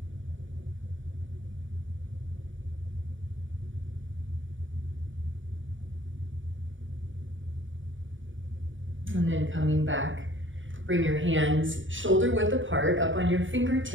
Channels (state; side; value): late; left; 0.56 ms